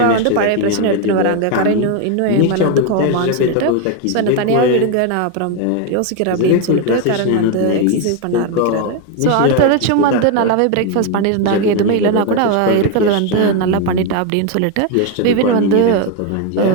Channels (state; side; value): different; both; correlation 0.01